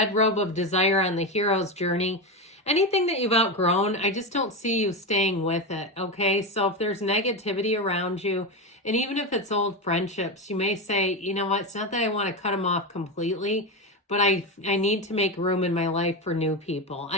robe of desire on the hero's journey. Anything that you've outgrown, I just don't see you staying with it, okay? So if there's negativity around you, and even if it's old friendships, you may say, you know what, it's not that I want to cut them off completely, but I need to make room in my life for new people.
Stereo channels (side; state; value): both; normal; correlation 0.15